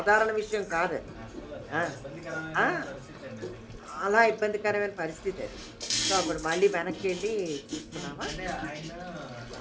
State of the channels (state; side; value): identical; both; correlation 1.00